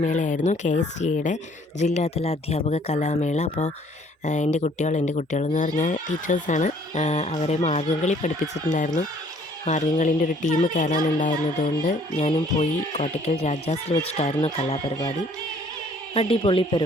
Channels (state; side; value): normal; both; correlation 0.59